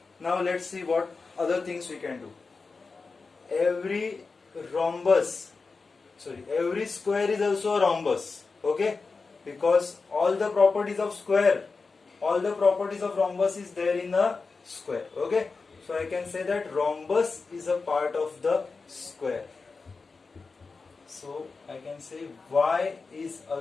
Now let's see what other things we can do. Every square is also a rhombus. Okay, because all the properties of square, all the properties of rhombus is there in a square. Okay, so I can say that rhombus is a part of the square. So I can say Y is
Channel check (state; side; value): quieter; right; 4.3 dB